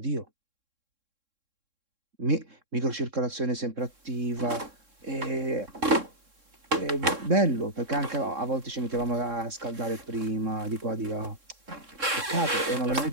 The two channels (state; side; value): late; left; 3.7 ms